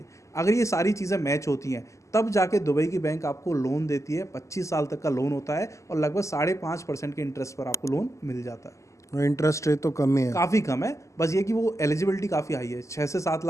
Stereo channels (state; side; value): late; right; 0.15 ms